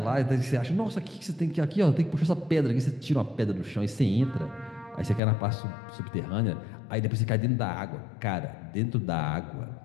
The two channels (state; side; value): drops out; right; at 5.2 s